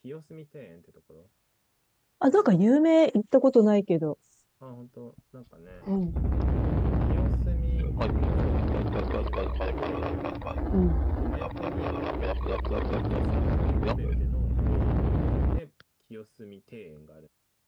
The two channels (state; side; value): identical; both; correlation 1.00